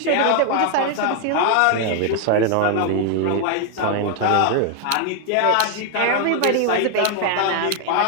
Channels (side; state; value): both; different; correlation 0.00